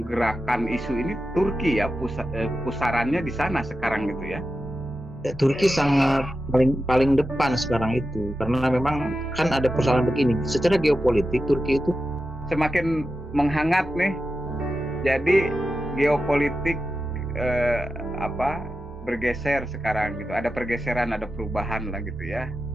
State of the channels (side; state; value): both; normal; correlation 0.91